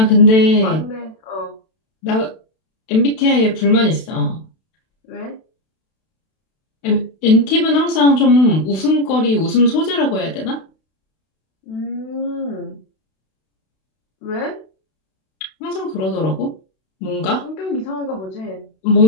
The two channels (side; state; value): right; late; 32 ms